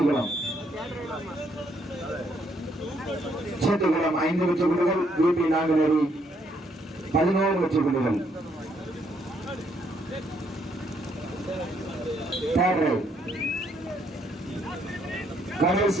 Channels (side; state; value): both; normal; correlation 0.71